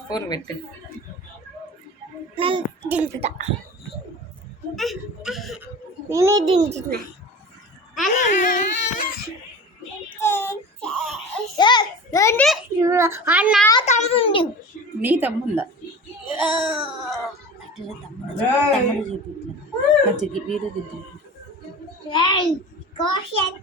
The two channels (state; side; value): normal; both; correlation 0.35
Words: ఫోన్ పెట్టు. దించుతా, నేనే దించుతున్నా. నా తమ్ముంది. నీ తమ్ముందా? తమ్ముడు చూపి మంచిగా వీరు తింటు.